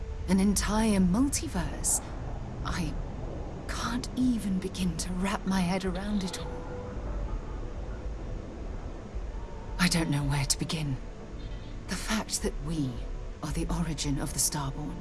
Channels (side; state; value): both; identical; correlation 1.00